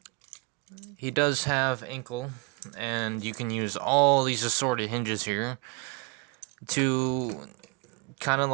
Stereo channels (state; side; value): quieter; left; 27.9 dB